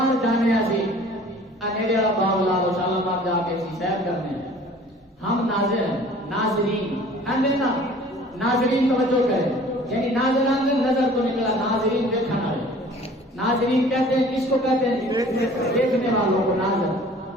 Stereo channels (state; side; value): normal; both; correlation 0.49